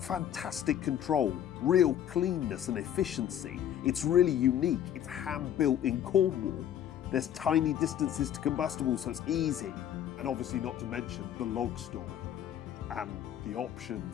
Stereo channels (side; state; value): right; quieter; 10.3 dB